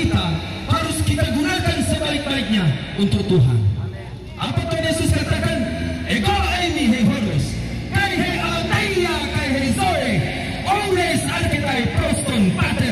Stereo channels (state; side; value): identical; both; correlation 1.00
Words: harus kita gunakan sebaik-baiknya untuk Tuhan. Apa Tuhan Yesus katakan? Ego ini hei hodos, kai hei alateia, kai hei zoe, ores arketai proston